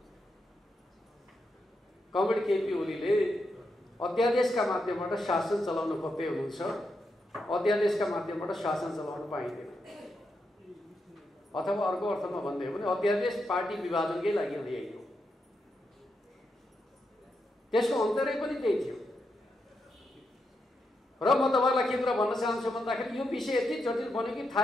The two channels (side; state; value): both; normal; correlation 0.84